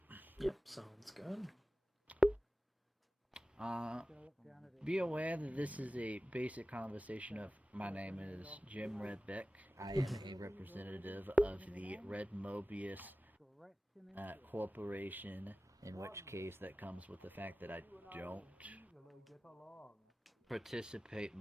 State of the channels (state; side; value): normal; both; correlation 0.96